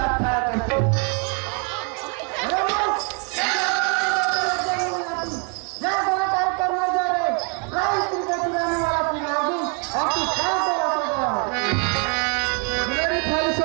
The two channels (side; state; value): left; quieter; 37.6 dB